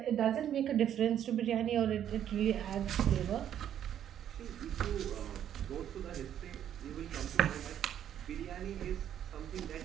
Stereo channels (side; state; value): left; quieter; 10.2 dB